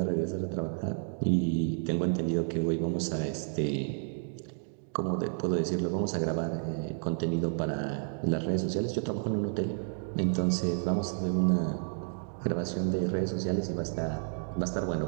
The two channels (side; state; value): left; silent; digital silence